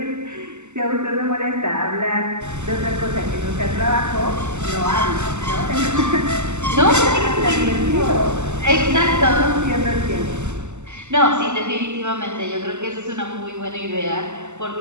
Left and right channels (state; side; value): late; left; 0.83 ms